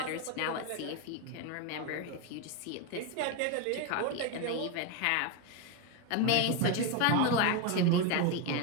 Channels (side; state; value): both; different; correlation 0.02